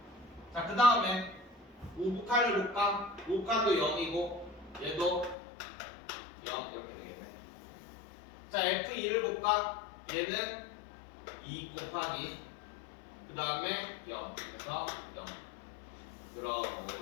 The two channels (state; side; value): drops out; right; at 5.4 s